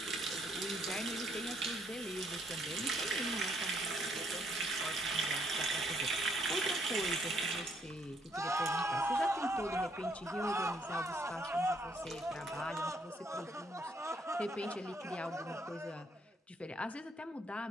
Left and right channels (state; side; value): normal; both; correlation 0.70